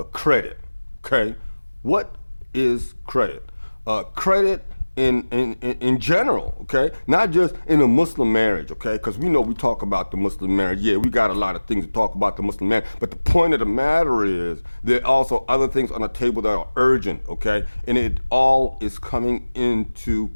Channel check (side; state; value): both; inverted; correlation -1.00